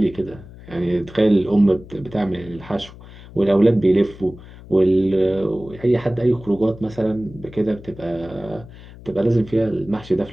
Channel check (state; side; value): noise; left; hum, 18 dB below the sound